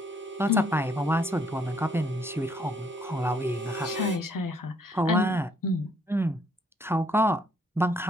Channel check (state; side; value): normal; both; correlation 0.67